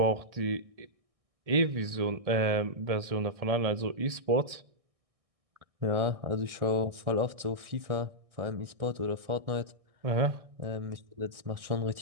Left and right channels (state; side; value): late; left; 1.6 ms